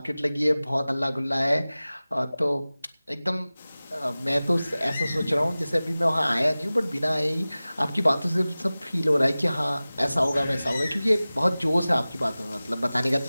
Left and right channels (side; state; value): both; inverted; correlation -0.98